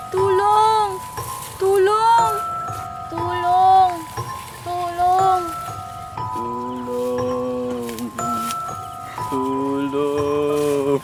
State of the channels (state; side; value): identical; both; correlation 1.00